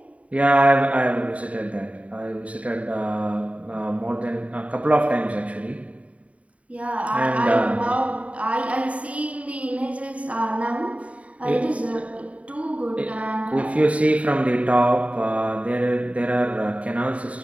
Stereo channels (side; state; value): left; late; 0.066 ms